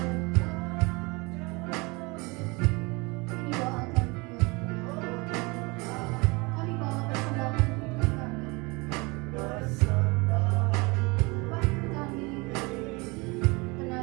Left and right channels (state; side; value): quieter; left; 26.5 dB